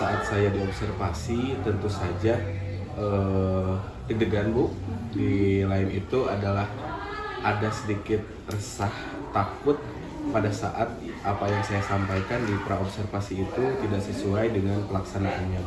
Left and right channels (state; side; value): identical; both; correlation 1.00